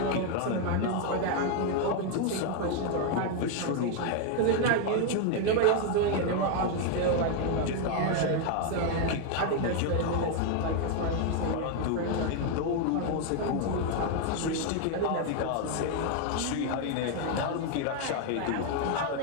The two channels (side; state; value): both; different; correlation 0.01